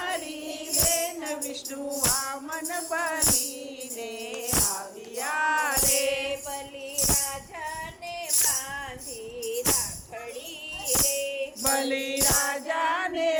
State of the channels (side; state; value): both; identical; correlation 1.00